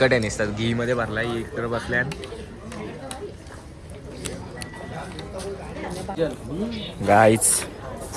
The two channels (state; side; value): identical; both; correlation 1.00